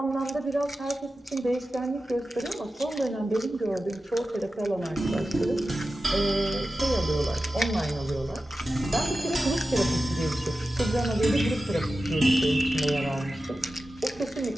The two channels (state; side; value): normal; both; correlation 0.93